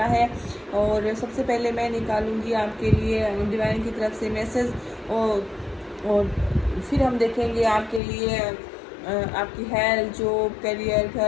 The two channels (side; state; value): right; drops out; at 8.0 s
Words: है। और सबसे पहले मैं निकालूंगी आपके लिए डिवाइन की तरफ से मैसेज और फिर हम देखेंगे आपके लिए आपकी हेल्थ, जॉब, करियर,